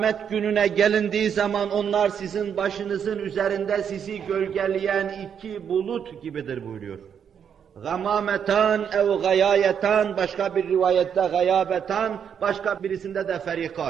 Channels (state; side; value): quieter; left; 7.9 dB